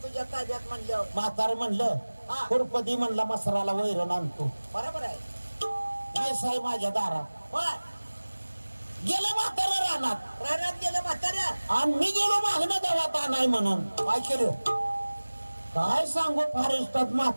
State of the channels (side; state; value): both; inverted; correlation -1.00